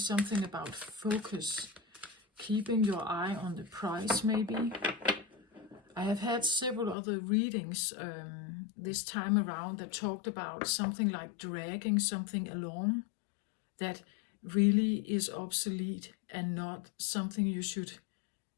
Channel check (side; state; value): right; drops out; at 7.0 s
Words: about focus, keeping your eye on the prize, maybe. I have had several other readings this time around that talked about something like dragging something along that really is obsolete and not something you should